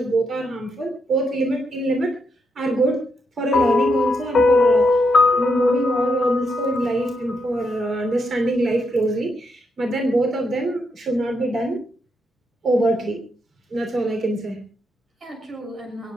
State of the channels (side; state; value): both; normal; correlation 0.80